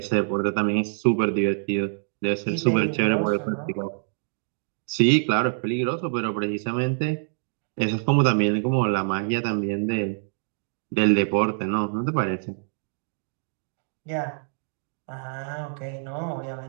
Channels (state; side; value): silent; left; digital silence